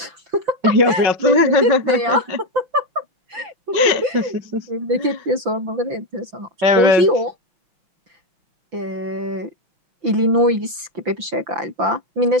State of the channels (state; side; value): late; left; 5.9 ms